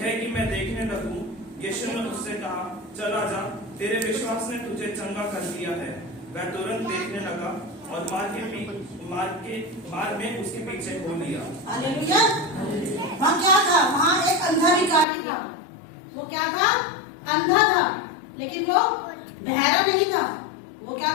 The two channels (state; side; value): drops out; right; at 15.1 s